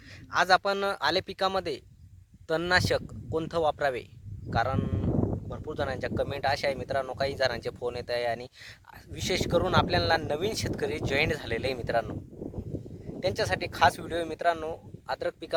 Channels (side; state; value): both; identical; correlation 1.00